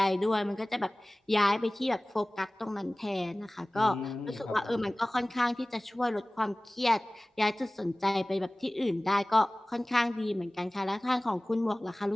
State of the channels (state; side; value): normal; both; correlation 0.98